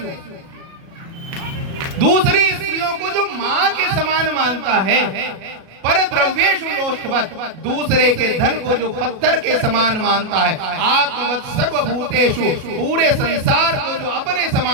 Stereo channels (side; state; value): left; late; 37 ms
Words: दूसरी स्त्रियों को जो माँ के समान मानता है, परद्रव्येषु लोष्टवत्, दूसरे के धन को जो पत्थर के समान मानता है, आत्मवत् सर्वभूतेषु, पूरे संसार को जो अपने